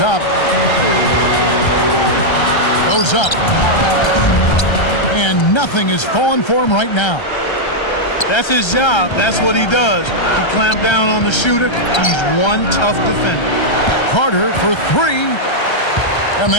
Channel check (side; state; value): right; late; 1.3 ms